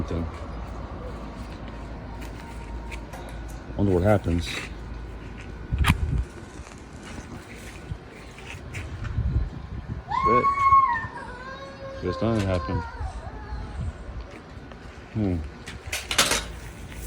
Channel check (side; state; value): both; identical; correlation 1.00